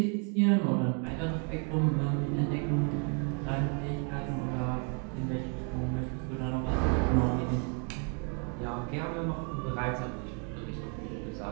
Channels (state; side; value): quieter; left; 39.1 dB